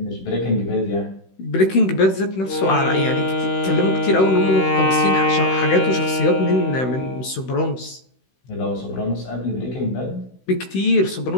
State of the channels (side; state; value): right; late; 16 ms